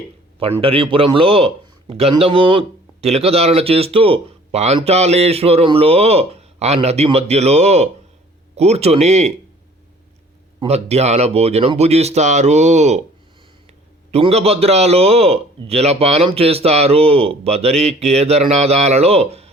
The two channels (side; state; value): both; normal; correlation 0.53